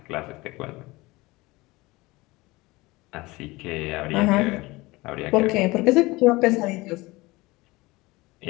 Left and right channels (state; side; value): quieter; right; 21.6 dB